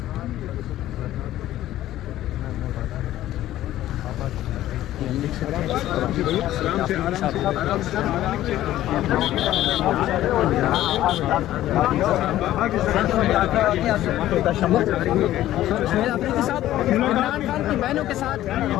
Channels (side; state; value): right; quieter; 13.9 dB